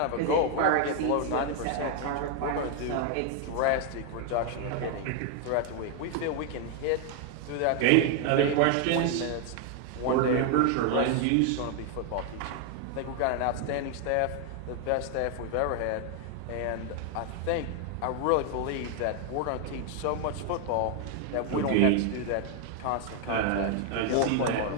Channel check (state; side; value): different; both; correlation 0.00